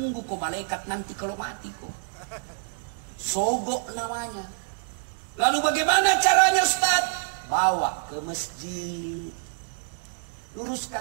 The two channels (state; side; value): silent; left; digital silence